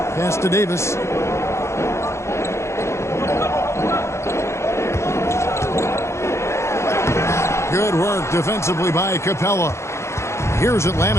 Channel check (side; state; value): right; late; 0.13 ms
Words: Pass to Davis. Good work defensively by Capella. Here's